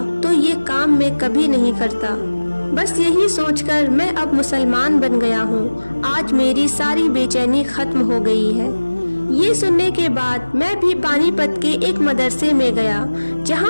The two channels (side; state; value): both; inverted; correlation -1.00